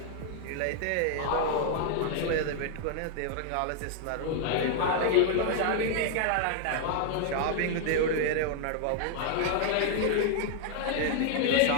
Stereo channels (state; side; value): different; both; correlation 0.00